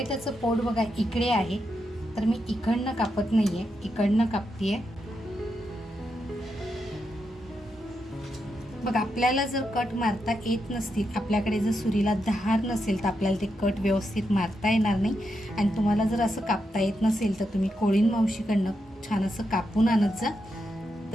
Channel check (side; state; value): both; normal; correlation 0.84